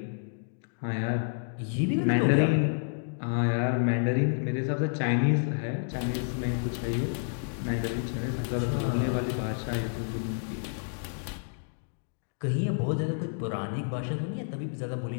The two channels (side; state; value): right; silent; digital silence